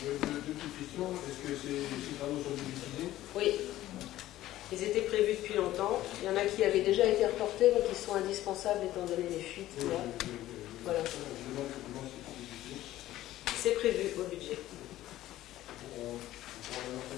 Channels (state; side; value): quieter; right; 14.7 dB